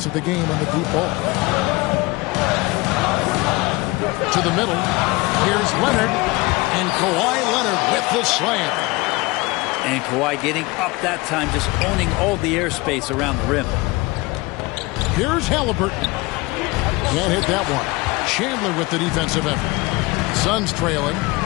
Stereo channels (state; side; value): quieter; right; 23.3 dB